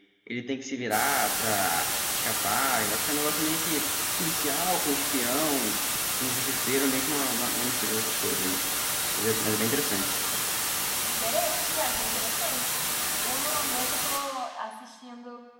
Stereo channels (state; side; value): identical; both; correlation 1.00